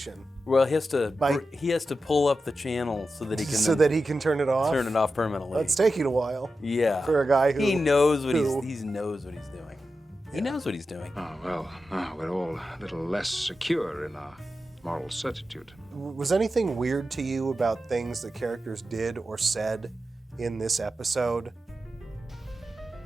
Well, he has to By- he has to pull up the channel so that he can So that he can turn it off? turn it off permanently. That's taking a while. Yeah. For a guy who... he knows what who- he knows what he's doing. He knows what he's doing. Oh, well, now we're all a little less secure in our moral certitude. Was anything weird to you about things that characters did or said in this episode?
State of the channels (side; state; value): both; normal; correlation 0.91